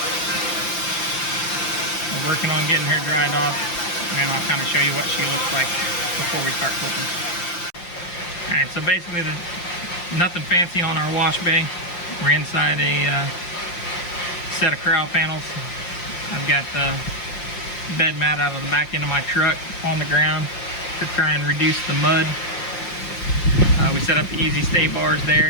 we're working on getting her dried off, and I'll kind of show you what she looks like before we start flipping. Alright, so basically nothing fancy on our wash bay. We're inside a set of corral panels. I've got the bed mat out of the back end of my truck on the ground to try and reduce the mud. We set up the easy stay bars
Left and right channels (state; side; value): late; right; 5.8 ms